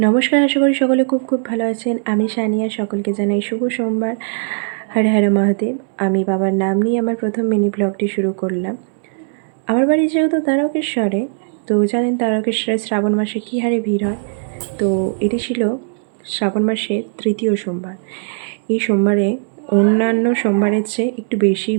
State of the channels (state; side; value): silent; left; digital silence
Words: আশা করি সকলে খুব খুব ভালো আছেন। আমি সানিয়া, সকলকে জানাই শুভ সোমবার। হর হর মহাদেব। আমি বাবার নাম নিয়ে আমার প্রথম মিনি ব্লগটি শুরু করলাম। আমার বাড়ি যেহেতু তারকেশ্বরে, তো জানেন তারকেশ্বরে শ্রাবণ মাসে কী হারে ভিড় হয়। তো এটি ছিল শ্রাবণ মাসের তৃতীয় সোমবার। এই সোমবারে অন্যান্য সোমবারের চেয়ে একটু বেশি